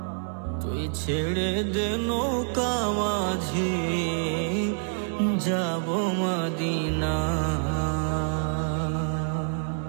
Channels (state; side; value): silent; left; digital silence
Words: তুই ছেড়ে দে নৌকা মাঝি যাব মদিনা।